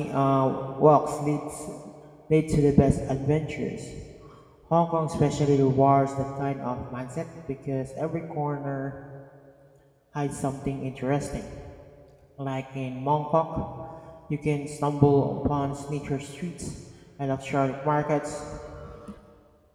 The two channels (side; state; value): both; identical; correlation 1.00